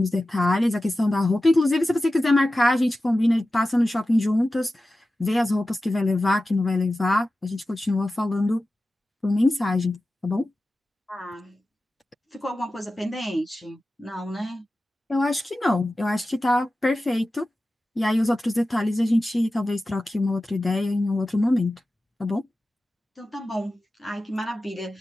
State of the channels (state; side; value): normal; both; correlation 0.94